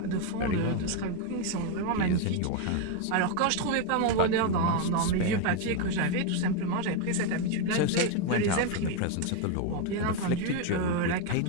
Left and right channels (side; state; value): both; different; correlation 0.02